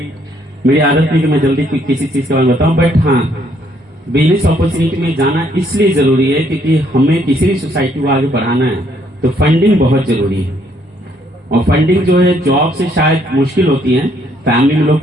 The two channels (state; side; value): normal; both; correlation 0.68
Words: मेरी आदत नहीं कि मैं जल्दी किसी चीज के बारे में बताऊं, बट हाँ, बिजनेस अपॉर्चुनिटी में जाना इसलिए जरूरी है क्योंकि हमें किसी भी सोसाइटी को आगे बढ़ाना है तो फंडिंग बहुत जरूरी है। और फंडिंग जो है जॉब से शायद मुश्किल होती है, फैमिली में लोग